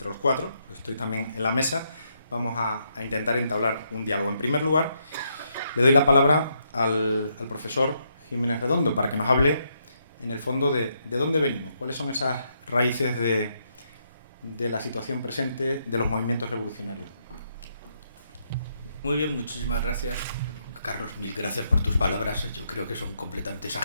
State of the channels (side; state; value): both; inverted; correlation -0.77